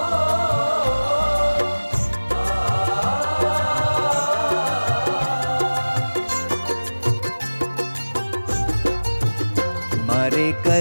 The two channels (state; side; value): inverted; both; correlation -1.00